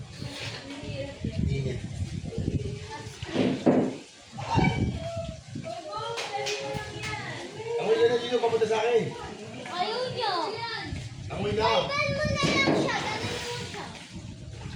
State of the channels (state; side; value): identical; both; correlation 1.00